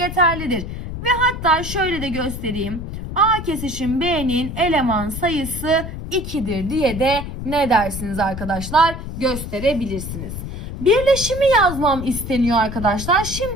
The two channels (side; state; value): left; noise; rumble, 7 dB below the sound